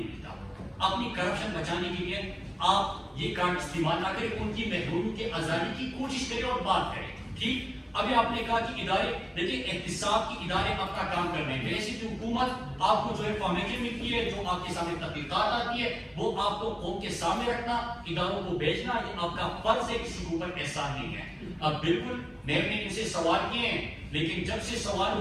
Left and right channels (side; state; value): both; identical; correlation 1.00